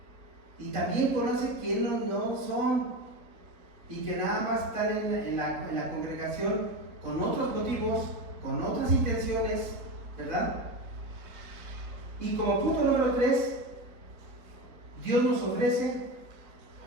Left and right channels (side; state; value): left; late; 4.1 ms